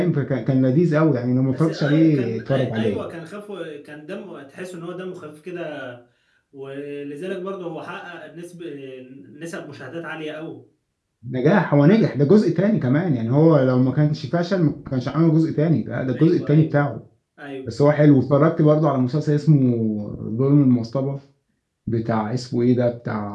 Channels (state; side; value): identical; both; correlation 1.00